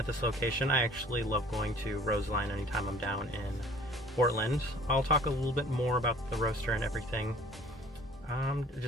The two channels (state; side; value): normal; both; correlation 0.51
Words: this location. I actually love going to Roseline anytime I'm down in Portland. I'll talk a little bit more about the roaster and everything